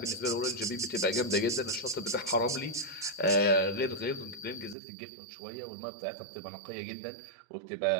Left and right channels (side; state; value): left; drops out; at 4.8 s